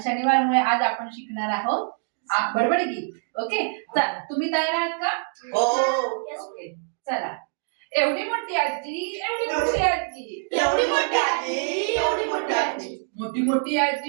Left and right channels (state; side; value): silent; left; 62 dB below the other